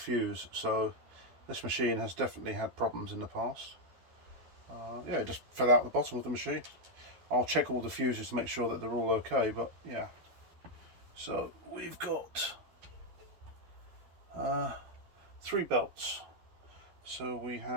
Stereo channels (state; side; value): late; left; 12 ms